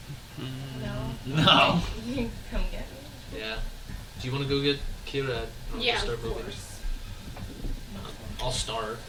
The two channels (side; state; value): both; identical; correlation 1.00